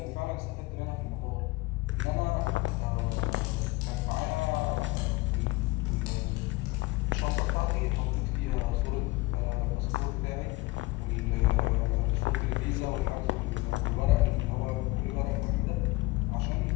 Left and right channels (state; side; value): quieter; right; 21.3 dB